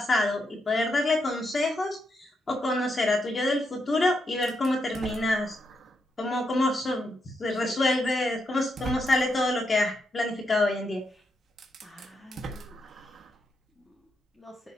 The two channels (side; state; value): both; normal; correlation 0.82